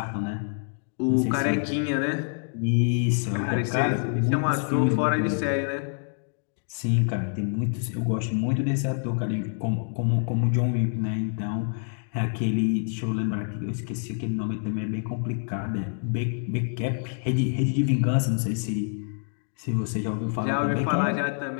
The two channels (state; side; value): silent; right; 60 dB below the other